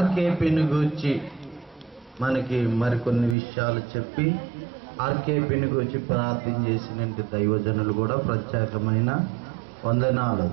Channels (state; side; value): drops out; left; at 3.4 s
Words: గురించి మనకి మరికొన్ని విషయాలు చెప్పి ఆర్కేపీని గురించి ప్రార్థన చేసిన దైవజనులు కూడా ప్రత్యేకమైన వందనాలు.